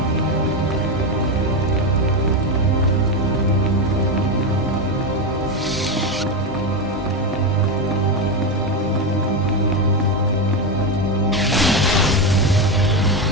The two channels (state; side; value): normal; both; correlation 0.11